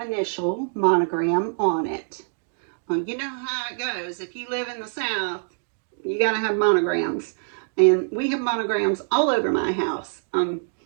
monogram on it. You know how it goes. If you live in the South, you got to have monograms. And we have monograms all over my house.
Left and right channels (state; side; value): silent; left; digital silence